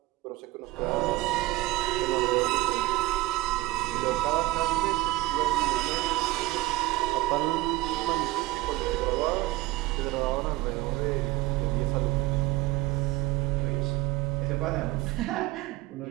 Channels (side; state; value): left; quieter; 19.0 dB